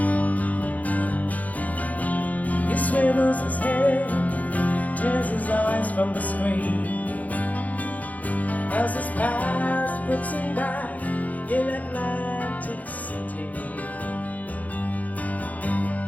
Swivels his head, tears his eyes from the screen, as his past puts him back in Atlantic City.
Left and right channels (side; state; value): right; late; 0.075 ms